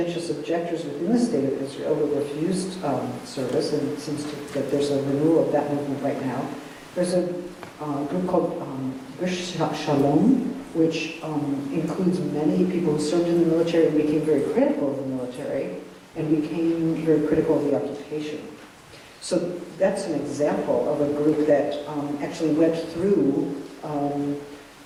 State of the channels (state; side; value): identical; both; correlation 1.00